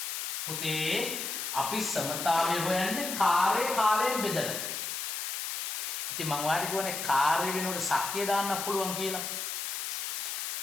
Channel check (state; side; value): noise; left; hiss, 3 dB below the sound